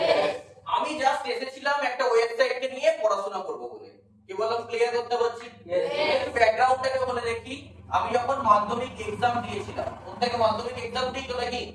আমি জাস্ট এসেছিলাম একটা ওয়েবসাইটকে নিয়ে পড়াশোনা করব বলে, কি বললাম? ক্লিয়ার করতে পারছি? ব্যাকগ্রাউন্ডটাকে বলে দেখি, আমি যখন মাধ্যমিক এক্সাম দিয়েছিলাম, প্রত্যেকে মাধ্যমিক এক্সাম দিয়েছো নাকি?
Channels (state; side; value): identical; both; correlation 1.00